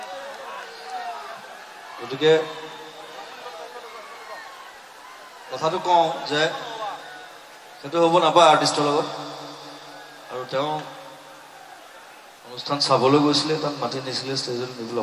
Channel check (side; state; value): both; identical; correlation 1.00